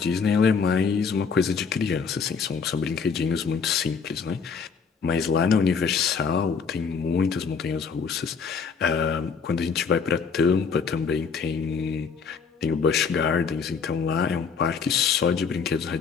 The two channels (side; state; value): right; quieter; 5.8 dB